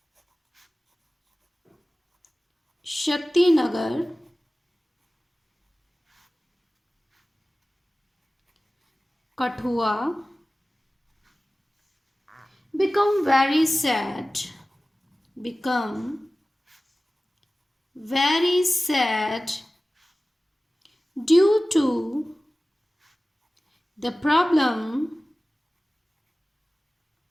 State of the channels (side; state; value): both; normal; correlation 0.97